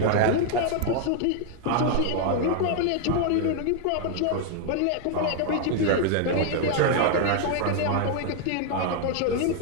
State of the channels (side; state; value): both; different; correlation 0.00